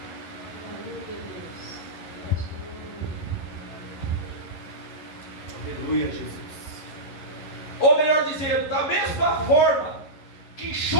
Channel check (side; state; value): right; late; 11 ms